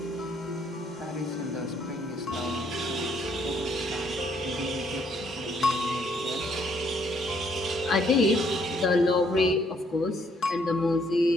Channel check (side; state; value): both; normal; correlation 0.68